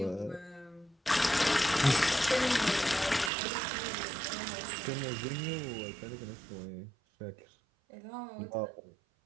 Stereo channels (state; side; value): drops out; left; at 3.3 s